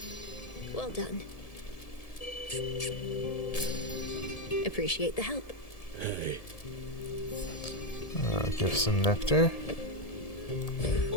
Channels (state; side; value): late; right; 1.7 ms